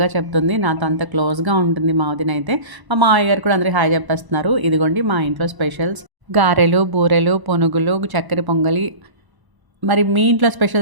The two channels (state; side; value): late; left; 1.0 ms